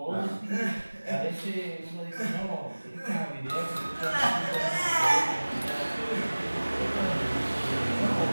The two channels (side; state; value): both; inverted; correlation -1.00